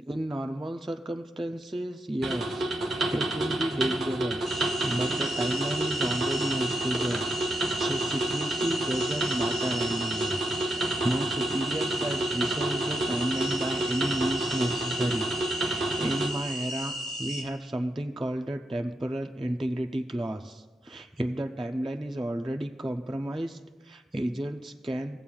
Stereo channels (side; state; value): both; normal; correlation 0.84